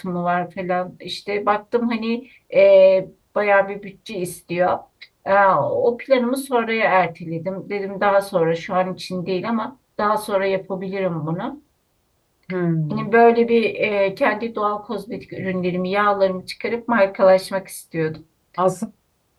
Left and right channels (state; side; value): identical; both; correlation 1.00